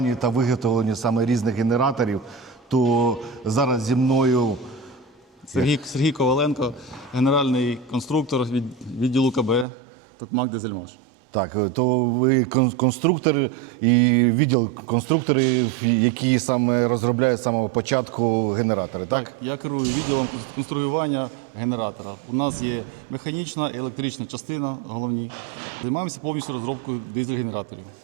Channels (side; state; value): left; drops out; at 9.7 s